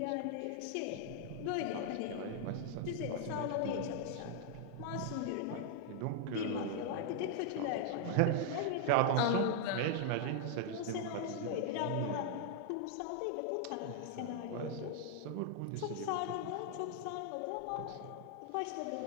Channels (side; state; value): both; different; correlation 0.00